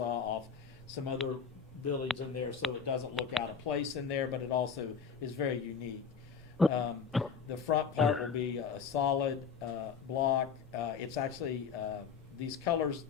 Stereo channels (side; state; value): right; quieter; 6.3 dB